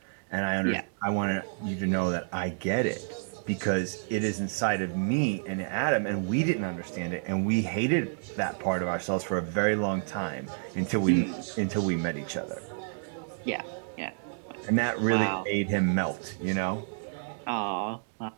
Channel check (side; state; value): left; silent; digital silence